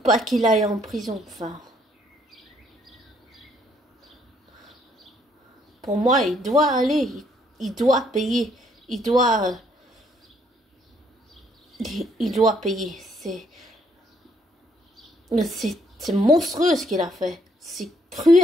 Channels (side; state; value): both; normal; correlation 0.68